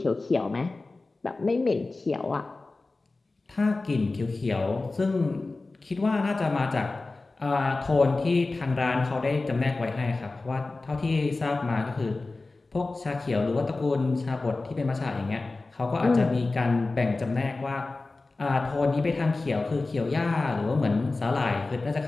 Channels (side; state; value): right; quieter; 3.4 dB